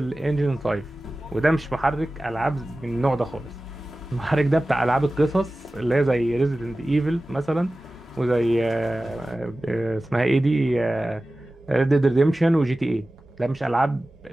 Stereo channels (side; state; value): both; normal; correlation 0.96